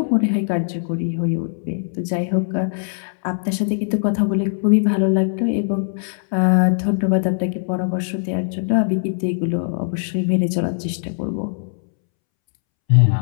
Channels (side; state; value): right; silent; 65 dB below the other